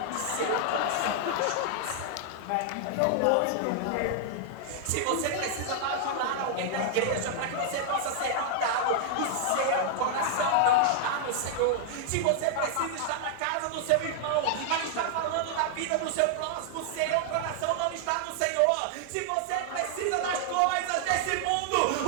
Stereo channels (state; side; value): different; both; correlation 0.00